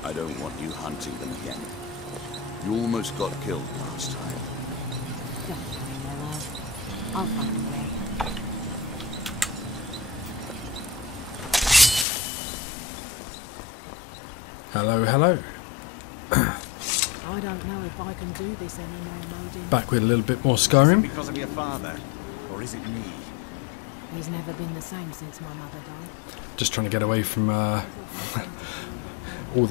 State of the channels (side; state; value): right; drops out; at 12.1 s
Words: I don't want you hunting them again. You almost got killed last time. Don't worry, my love. I'll find a way. Hello, hello. I don't know if I can do this anymore, Modin. Back with a little bit more Is Skyrim. it because of your father, or is it me? He's never been the same since my mother died. Just trying to get away from all